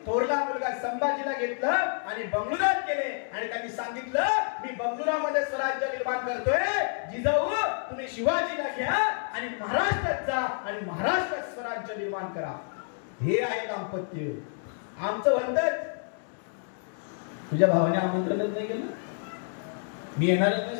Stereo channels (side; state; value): right; silent; 59 dB below the other